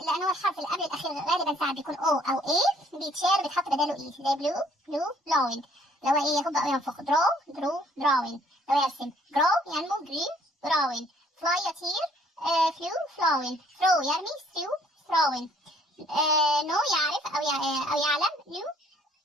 لأن هو الحرف اللي قبل الأخير غالبا ساعات بيكون O أو A، بيتشال بيتحط بداله E زي blue blowing، لو هو إيه يهب أو ينفخ. drawing لو يرسم. grow ينمو green growing. fly يطير flew flowing. throw يرمي throwing. know يعرف أو يعلم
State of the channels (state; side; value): normal; both; correlation 0.61